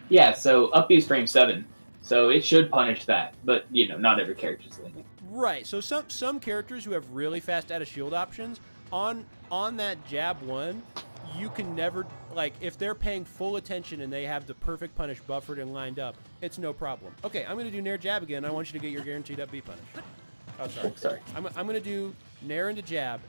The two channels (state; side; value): inverted; both; correlation -1.00